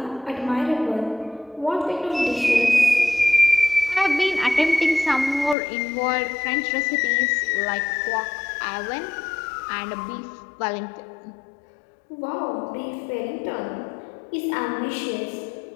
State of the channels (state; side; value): drops out; right; at 5.6 s